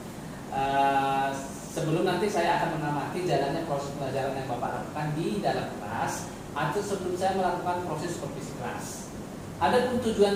Sebelum nanti saya akan mengamati jalannya proses pelajaran yang Bapak lakukan di dalam kelas, atau sebelum saya melakukan proses supervisi kelas. Adapun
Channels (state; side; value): identical; both; correlation 1.00